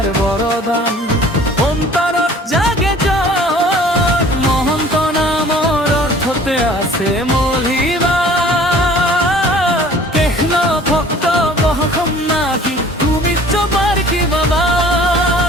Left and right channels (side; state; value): both; normal; correlation 0.50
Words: বৰদান অন্তৰত জাগে জ্বৰ মহন্ত নামৰ অৰ্থতে আছে মলিবা কৃষ্ণ ভক্ত বহসম নাকি তুমি চপাৰ কি বাবা